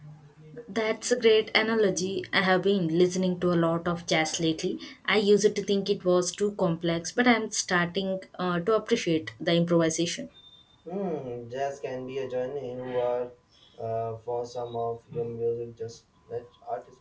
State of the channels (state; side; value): identical; both; correlation 1.00